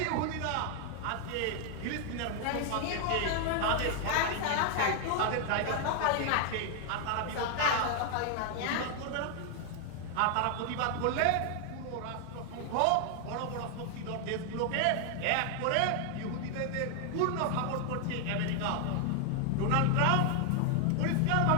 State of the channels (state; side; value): different; both; correlation 0.00